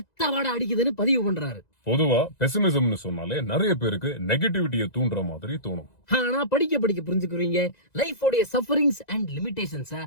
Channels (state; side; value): late; right; 1.9 ms